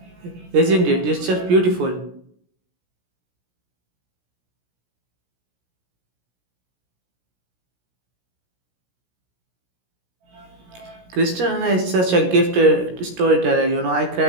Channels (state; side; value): late; left; 17 ms